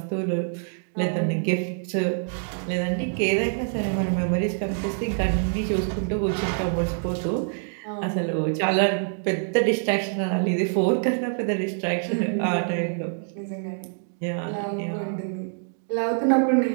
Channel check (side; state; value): left; silent; digital silence